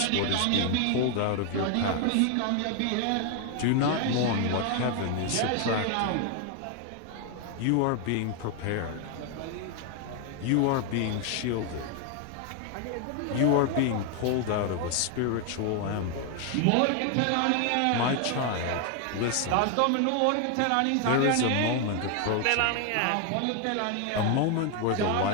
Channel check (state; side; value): different; both; correlation 0.01